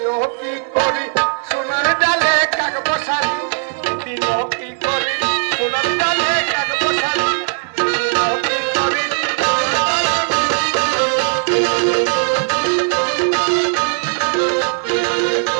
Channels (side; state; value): left; silent; digital silence